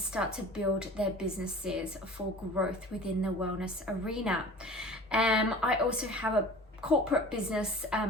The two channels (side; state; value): both; normal; correlation 0.41